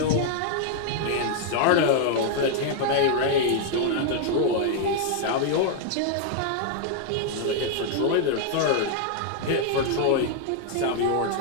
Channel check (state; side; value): different; both; correlation 0.00